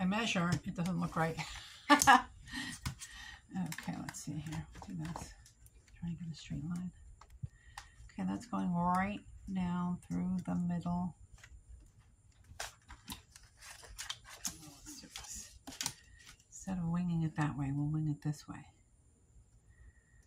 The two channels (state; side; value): identical; both; correlation 1.00